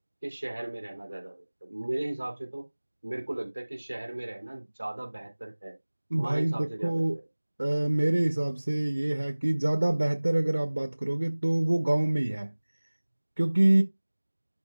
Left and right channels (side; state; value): both; inverted; correlation -1.00